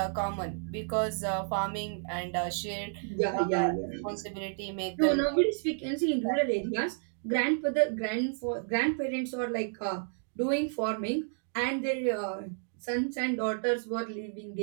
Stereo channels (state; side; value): silent; left; digital silence